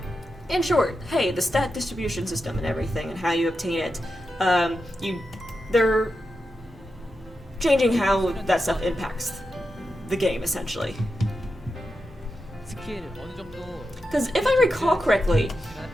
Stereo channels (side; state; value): both; normal; correlation 0.89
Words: in short, hey, the stat distribution system and everything, and how you obtain it, they're changing how that stuff impacts the game essentially. 스킬 어느 정도 Because if I recall correctly,